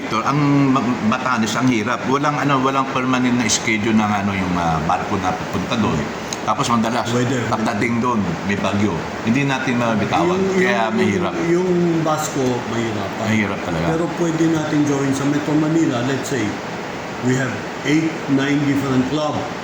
ang Batanes ang hirap. Walang permanent na schedule ng yung barko na pupunta doon. Tapos madalas pagdating doon may bagyo. Hindi natin mabitawan. Kaya mahirap. Yung Basco, mahirap. Mahirap talaga. Pero pwede natin gawin sa Metro Manila, let's say, we have 8-9 different club.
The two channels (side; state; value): both; identical; correlation 1.00